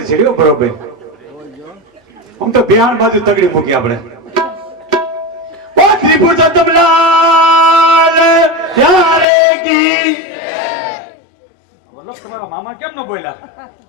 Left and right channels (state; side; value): drops out; right; at 9.2 s